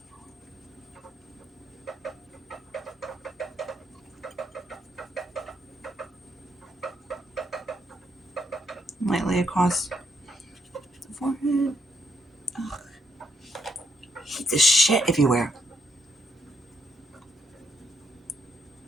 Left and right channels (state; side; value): normal; both; correlation 0.77